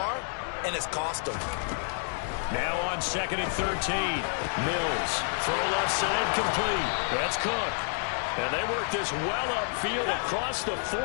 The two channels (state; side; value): silent; right; 59 dB below the other